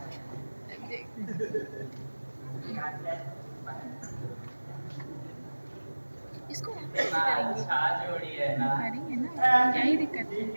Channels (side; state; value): both; inverted; correlation -1.00